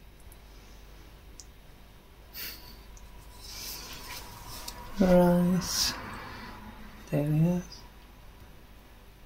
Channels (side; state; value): both; identical; correlation 1.00